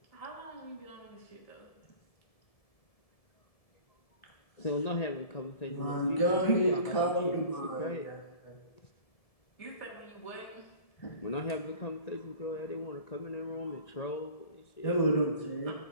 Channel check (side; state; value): right; late; 1.7 ms